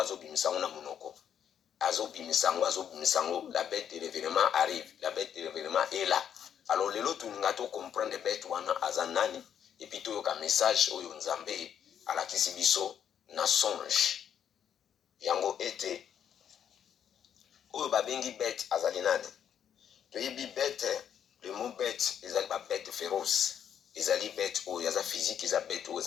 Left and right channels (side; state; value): right; quieter; 8.9 dB